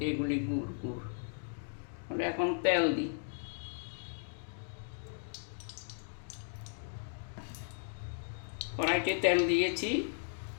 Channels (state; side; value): silent; right; digital silence